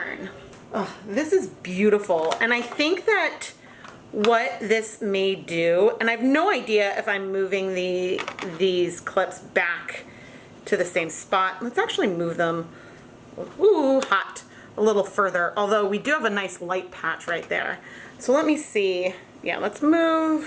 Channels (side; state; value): both; identical; correlation 1.00